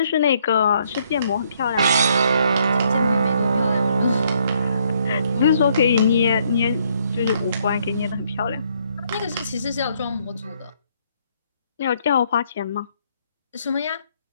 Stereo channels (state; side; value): inverted; both; correlation -0.69